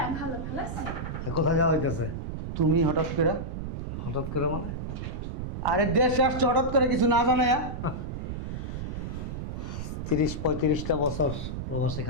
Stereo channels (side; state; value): right; noise; rumble, 5 dB below the sound